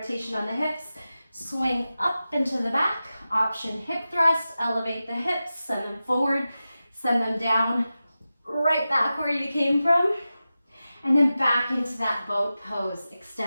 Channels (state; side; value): inverted; both; correlation -0.94